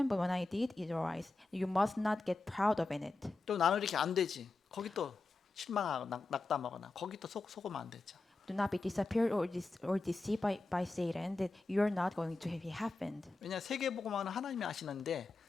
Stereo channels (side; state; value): right; quieter; 3.3 dB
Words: but when I did, it arise. You must not get proud of in it. 또 나는 이렇게 안 되지. 거기 또 실망하고 낙담하거나 거기 또 속으면 안 되죠. Do not be disappeared or deceived by Satan that you are not going to have happened. 왜냐 세계 복음화는 하나님이 하시는데